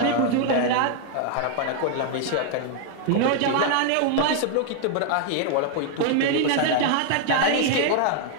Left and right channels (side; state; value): both; different; correlation 0.00